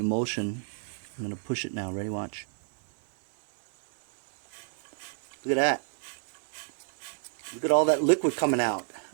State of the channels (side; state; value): left; silent; 57 dB below the other